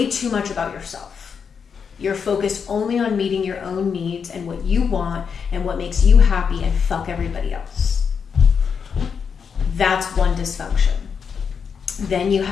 too much about yourself. You're focused only on meeting your own needs and what you want and what makes you happy, and fuck everybody else. That's one dysfunction. Then you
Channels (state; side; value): quieter; right; 6.4 dB